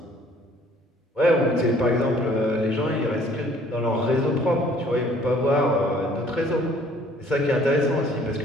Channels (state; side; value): normal; both; correlation 0.57